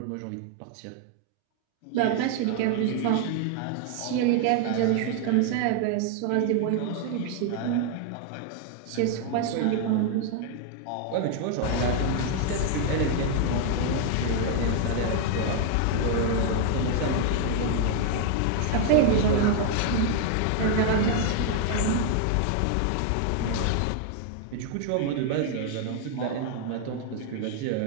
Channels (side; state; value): both; different; correlation 0.00